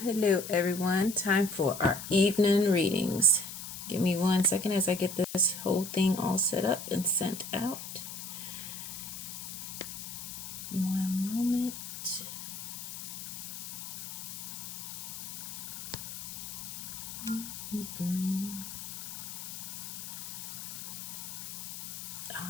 hello, everyone. Time for our evening readings. Give me 1 second as I get this whole thing all set up and sent out. One moment.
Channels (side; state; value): left; noise; hiss, 8 dB below the sound